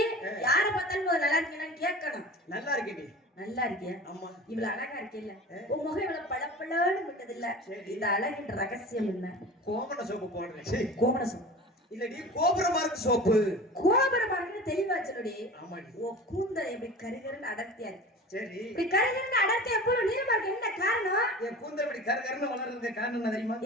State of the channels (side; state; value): both; normal; correlation 0.36